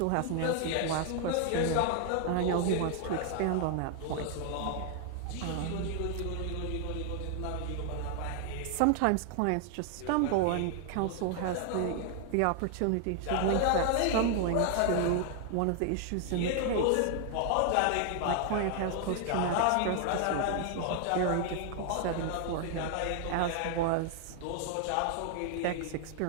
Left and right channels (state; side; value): different; both; correlation 0.00